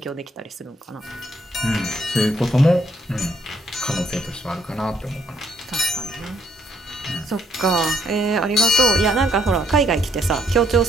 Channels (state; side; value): normal; both; correlation 0.70